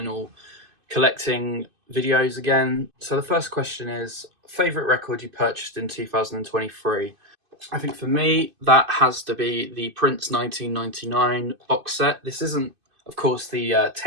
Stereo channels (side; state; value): left; late; 2.5 ms